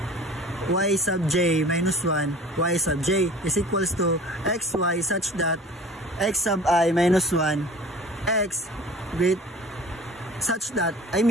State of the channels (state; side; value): normal; both; correlation 0.43